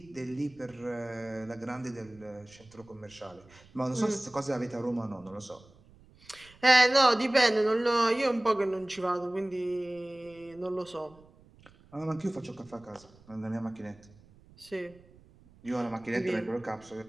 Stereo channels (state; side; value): noise; right; rumble, 26 dB below the sound